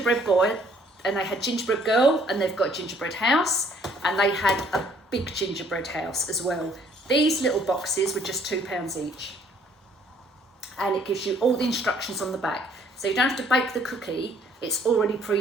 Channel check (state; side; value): normal; both; correlation 0.62